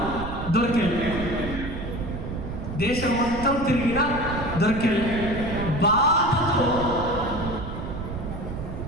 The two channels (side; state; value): right; noise; rumble, 7 dB below the sound